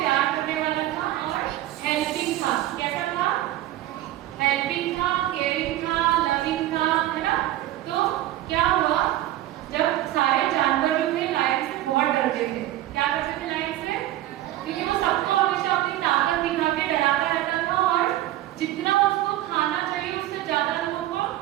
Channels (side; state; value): left; quieter; 14.4 dB